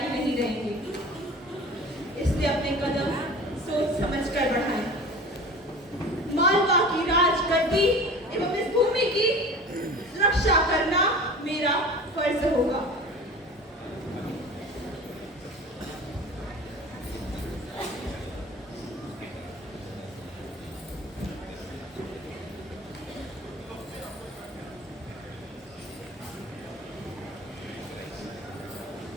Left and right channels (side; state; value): both; normal; correlation 0.39